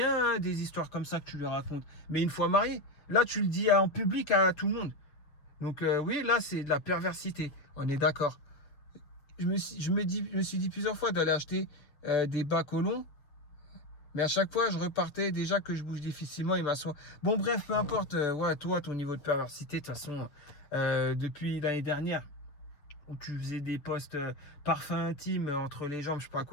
hein, des histoires comme ça que tu lui racontes. Mais une fois marié, là, tu le dis en public à tout le monde. Donc oui, là, c'est de la perversité. On est d'accord. Je me suis dit plusieurs fois d'aller acheter des bas colons. Mais à chaque fois, je repartais déjà que je bouge difficilement et m'assois. Bon, bref, peu importe. Ouais, toi, ton niveau de perversité, de toute façon, depuis l'année dernière, où tu faisais des posts parfums intimes entre les jambes, je sais pas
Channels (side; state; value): right; late; 7.0 ms